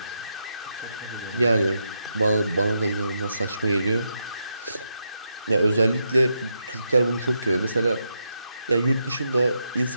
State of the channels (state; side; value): inverted; both; correlation -0.83